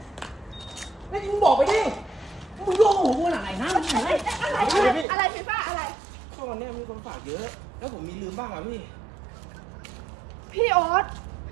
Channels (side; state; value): left; drops out; at 5.1 s